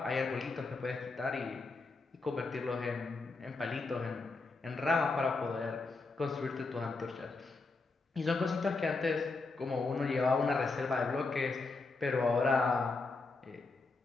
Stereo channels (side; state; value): right; quieter; 3.8 dB